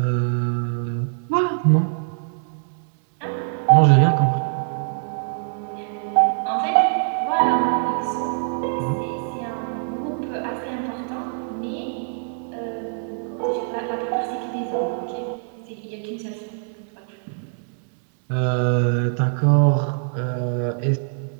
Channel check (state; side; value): silent; left; digital silence